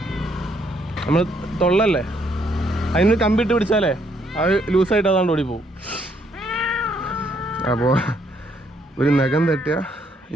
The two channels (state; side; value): normal; both; correlation 0.71